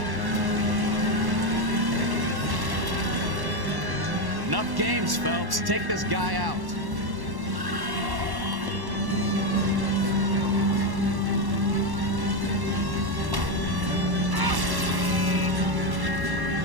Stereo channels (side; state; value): left; late; 1.1 ms